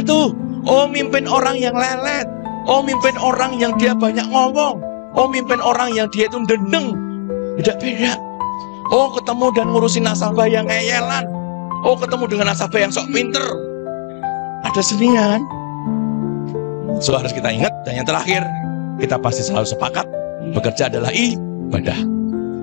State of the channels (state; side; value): silent; right; digital silence